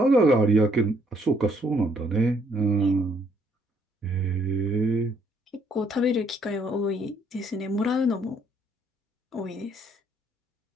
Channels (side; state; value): both; normal; correlation 0.68